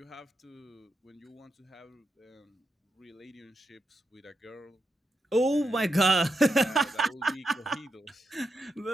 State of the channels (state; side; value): normal; both; correlation 0.85